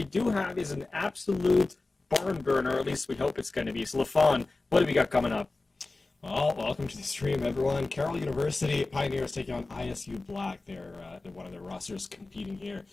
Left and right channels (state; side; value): quieter; right; 3.3 dB